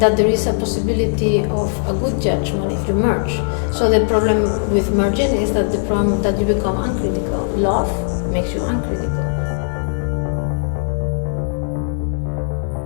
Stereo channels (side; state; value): right; silent; digital silence